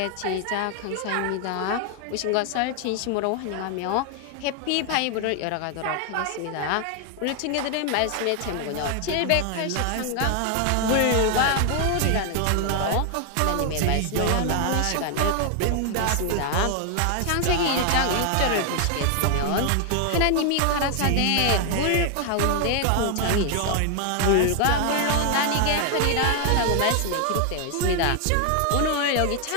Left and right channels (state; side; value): different; both; correlation 0.00